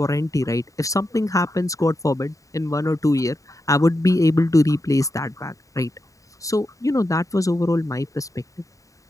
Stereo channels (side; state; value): right; late; 0.16 ms